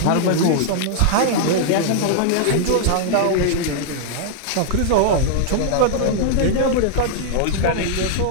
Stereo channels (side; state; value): both; different; correlation -0.01